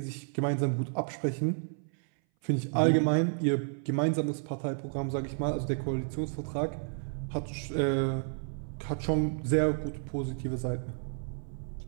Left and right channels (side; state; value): left; silent; 57 dB below the other